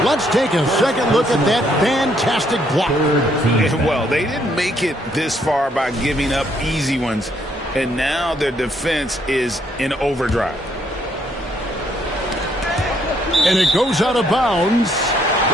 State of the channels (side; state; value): both; normal; correlation 0.70